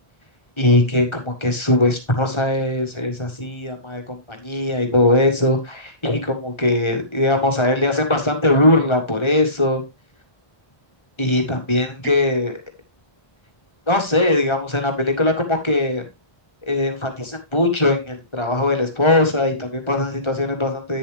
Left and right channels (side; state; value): right; late; 1.3 ms